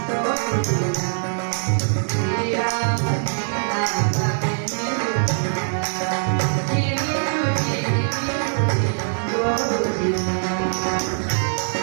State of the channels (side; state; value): left; silent; 64 dB below the other